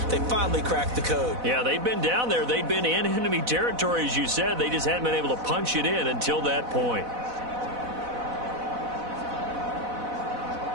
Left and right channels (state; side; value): late; left; 4.0 ms